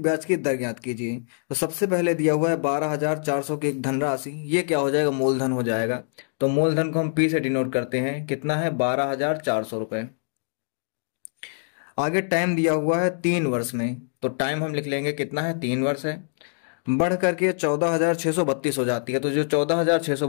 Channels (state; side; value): silent; right; digital silence